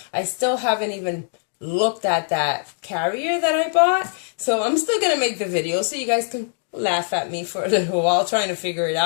I still haven't even looked at that carrier that I bought, so I'm still going to make the video so you guys can laugh at me for a little while trying to figure it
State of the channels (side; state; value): right; silent; 64 dB below the other